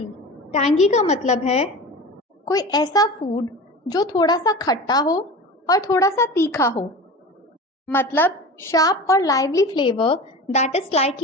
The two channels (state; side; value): normal; both; correlation 0.33